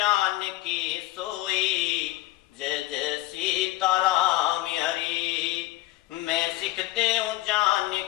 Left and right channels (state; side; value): quieter; right; 17.4 dB